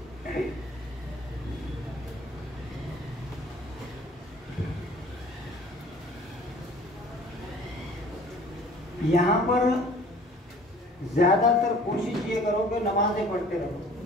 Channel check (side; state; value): both; normal; correlation 0.50